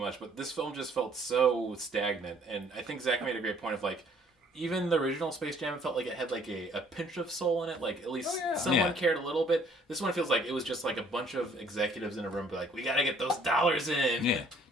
but this film just felt so stagnant, and I think Zach made a great point of like, even the original Space Jam felt like it had like a pinch of soul in it, like at least someone cared a little bit. This one feels like it was just like a bunch of executives in a room, be like, we gotta get those dollars in. Yeah,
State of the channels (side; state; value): both; normal; correlation 0.60